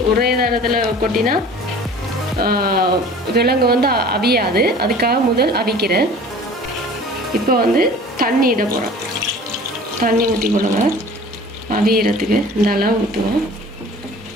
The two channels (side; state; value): both; normal; correlation 0.45